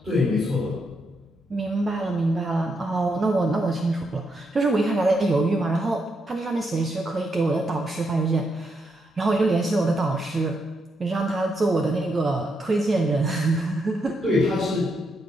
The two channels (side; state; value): both; normal; correlation 0.80